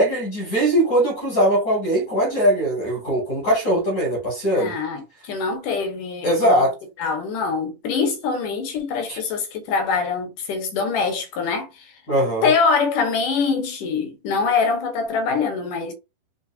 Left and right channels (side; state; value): right; late; 10 ms